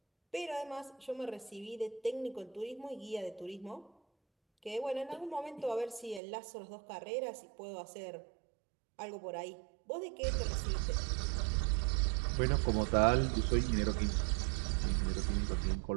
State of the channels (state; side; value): drops out; left; at 6.2 s